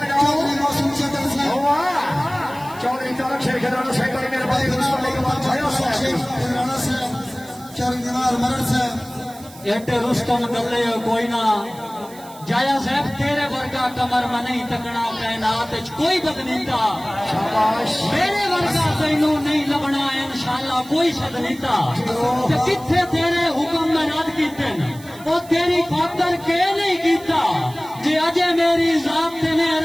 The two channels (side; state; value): right; noise; hiss, 21 dB below the sound